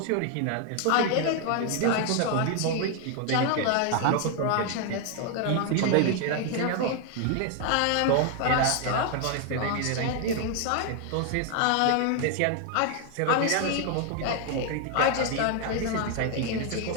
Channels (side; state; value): both; different; correlation 0.00